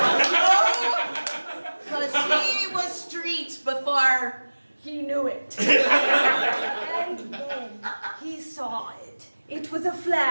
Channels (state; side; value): inverted; both; correlation -1.00